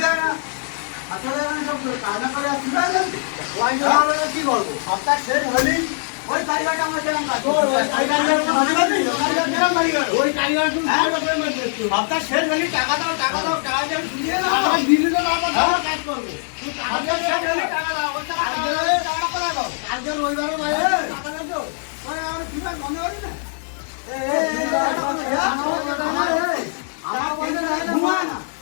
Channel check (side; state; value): right; silent; 64 dB below the other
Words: না। আসলে সব কাজা করে কি করবো? সপ্তাহ শেষ হলি ওই কারিগরটা আমার যেরকম কাজ ওই কারিগর সপ্তাহ শেষ হলি টাকা দাও টাকা দাও টাকা দিয়ে শুনিয়ে দাও দিদি তো কাজ করবো টাকা দাও আজকে রবিবারে বাইরে টাকা দাও আমার কি মনে করি না